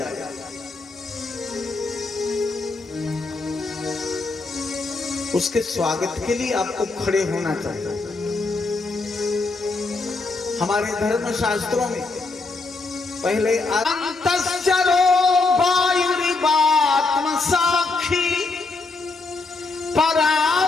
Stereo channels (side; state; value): right; quieter; 3.7 dB